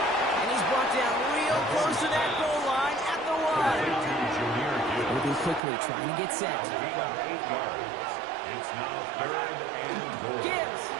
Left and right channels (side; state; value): left; drops out; at 5.6 s